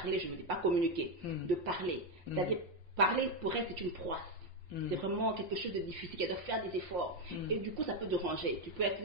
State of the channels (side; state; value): left; late; 5.7 ms